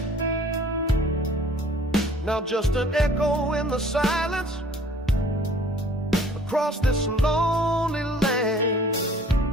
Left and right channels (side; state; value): both; normal; correlation 0.53